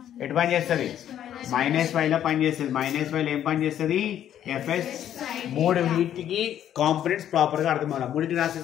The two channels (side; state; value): right; quieter; 10.6 dB